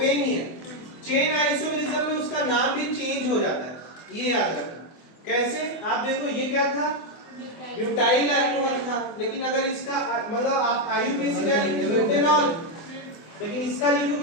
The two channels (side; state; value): right; late; 24 ms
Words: ही है चेन आइसोमेरिज्म में उसका नाम भी चेंज हो जाता है ये याद रखना कैसे आप देखो ये क्या था ब्यूटाइल अल्कोहल था लेकिन अगर इसका मतलब आप आयुर्वेद का लिखोगे ब्यूटेनॉल लेकिन इसका